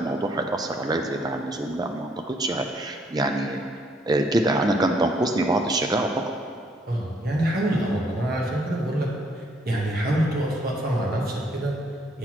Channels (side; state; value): both; normal; correlation 0.68